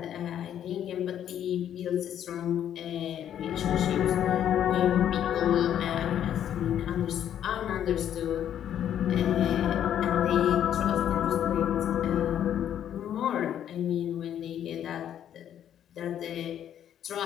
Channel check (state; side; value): quieter; right; 10.2 dB